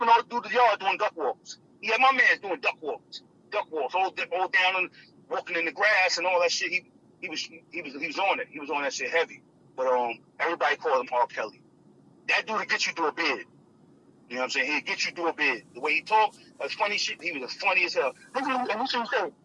all through the yard doing duck walks. He had my man doing duck walks, all down and walking in the grass and all that shit. He was on it. He was on that shit heavy. But everybody called him R. Kelly. That dude will get you through a bid. You know what I'm saying? He'll get you through a bid. The way he talked, that's funny shit. He was as funny as hell. And this what he said.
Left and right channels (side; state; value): both; identical; correlation 1.00